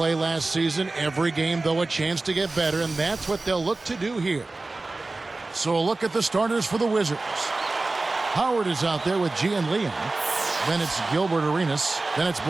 last season. Every game, though, a chance to get better, and that's what they'll look to do here. So a look at the starters for the Wizards. Howard is out there with G and Liam. Then it's Gilbert Arenas. Then it's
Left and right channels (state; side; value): quieter; left; 3.3 dB